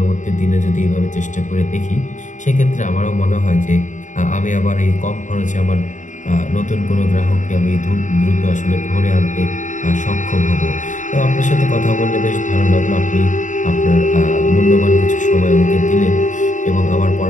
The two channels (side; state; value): right; late; 0.36 ms